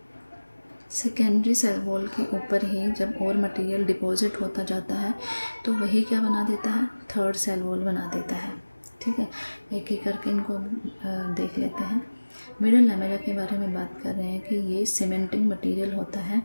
सेकेंडरी सेल वॉल के ऊपर ही जब और मटेरियल डिपॉजिट होता जाता है तो वही क्या बना देता है, थर्ड सेल वॉल बना देता है, ठीक है। एक एक करके इनको देख लेते हैं। मिडिल लैमेला के बारे में बात कर रहे हैं कि ये सीमेंटिंग मटेरियल होता है।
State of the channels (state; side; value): inverted; both; correlation -1.00